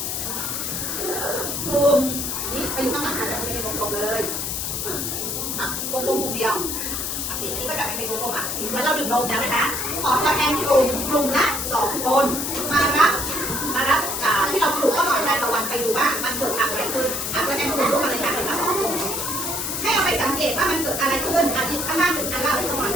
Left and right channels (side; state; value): left; noise; hiss, 2 dB below the sound